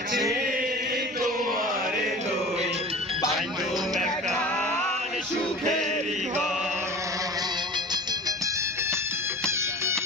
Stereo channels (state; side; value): normal; both; correlation 0.37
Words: তোমারে লই বান্ধু মেকান সুখেরি ঘর